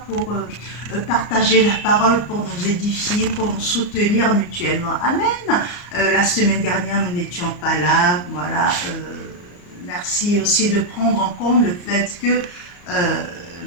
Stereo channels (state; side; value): late; right; 34 ms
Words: pour partager la parole, pour nous édifier, pour nous soutenir mutuellement. Amen. La semaine dernière, nous n'étions pas là. Voilà. Merci aussi de prendre en compte le fait que